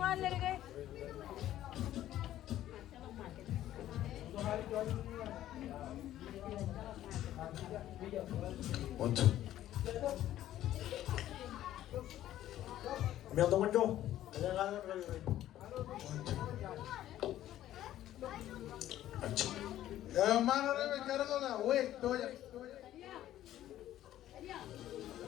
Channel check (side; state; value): right; quieter; 13.0 dB